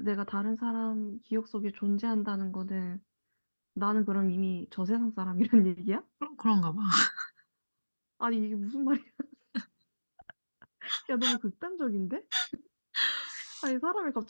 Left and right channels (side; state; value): both; inverted; correlation -1.00